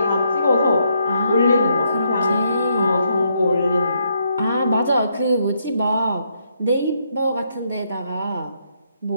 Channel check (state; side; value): inverted; both; correlation -0.75